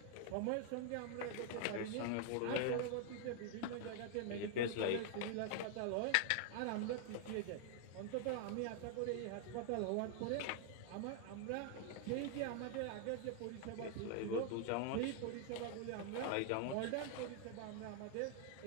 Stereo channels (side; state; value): both; different; correlation 0.00